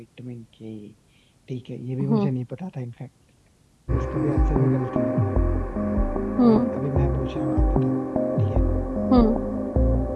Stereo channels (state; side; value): identical; both; correlation 1.00